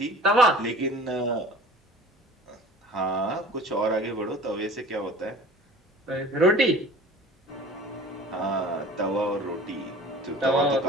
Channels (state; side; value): normal; both; correlation 0.43